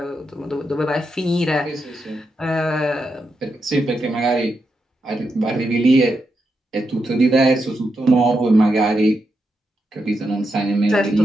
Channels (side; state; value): both; normal; correlation 0.85